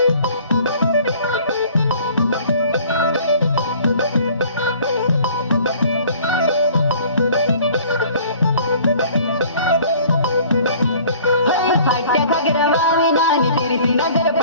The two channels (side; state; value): both; inverted; correlation -0.52